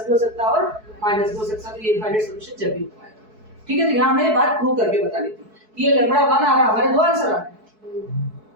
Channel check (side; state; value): left; late; 4.6 ms